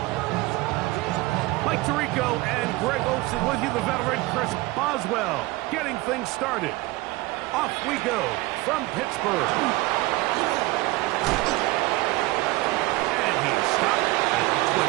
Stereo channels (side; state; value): left; quieter; 20.6 dB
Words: Mike Tirico and Greg Olsen with you, the veteran Chris Boswell, getting things started. Off we go from Pittsburgh. And he's stopped at the